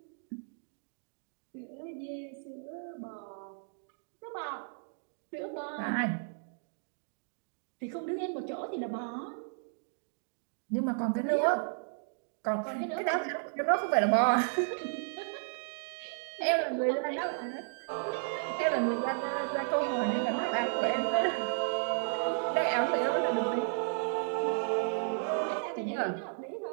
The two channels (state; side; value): silent; left; digital silence